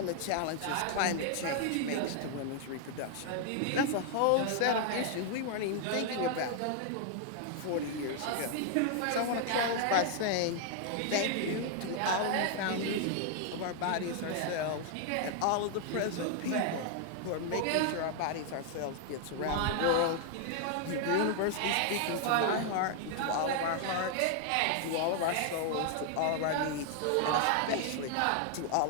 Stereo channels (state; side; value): different; both; correlation 0.00